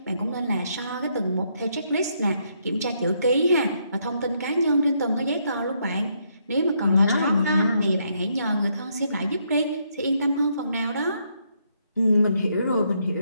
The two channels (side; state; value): both; inverted; correlation -0.75